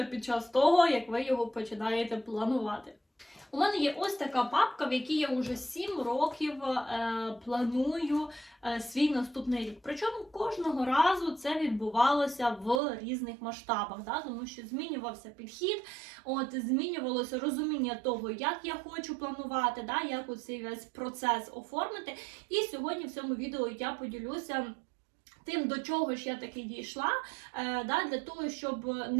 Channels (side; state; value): left; drops out; at 12.8 s